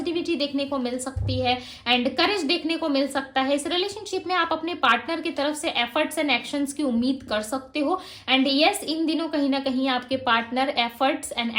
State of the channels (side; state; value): both; identical; correlation 1.00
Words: देखने को मिल सकती है एंड करेज देखने को मिल सकता है। इस रिलेशनशिप में आप अपने पार्टनर की तरफ से एफर्ट्स एंड एक्शंस की उम्मीद कर सकते हो। एंड यस, इन दिनों कहीं ना कहीं आपके पार्टनर एफर्ट्स एंड